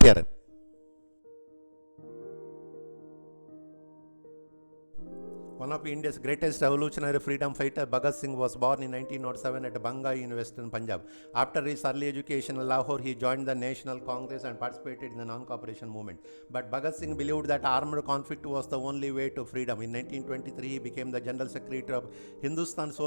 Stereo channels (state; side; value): inverted; both; correlation -1.00